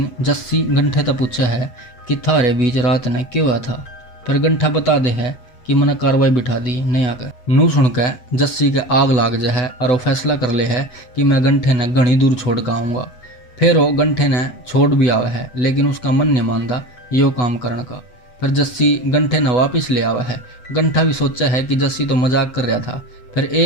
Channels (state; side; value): late; right; 8.1 ms